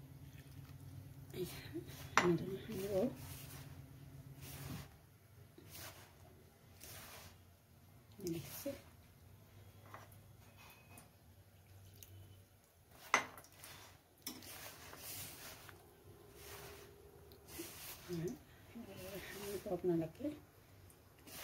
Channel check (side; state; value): both; identical; correlation 1.00